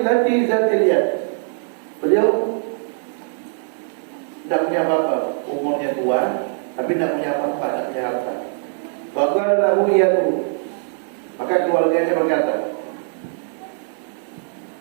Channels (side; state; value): left; silent; 65 dB below the other